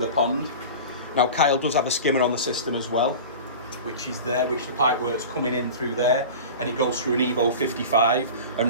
pond. Now Kyle does have a skimmer on the system as well, which is there, which the pipe work's coming in through there, and it goes through an Evo 55 and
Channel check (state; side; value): inverted; both; correlation -0.34